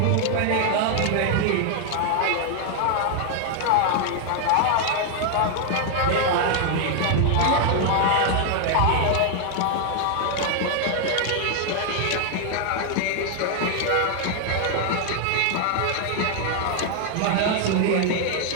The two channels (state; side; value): different; both; correlation 0.00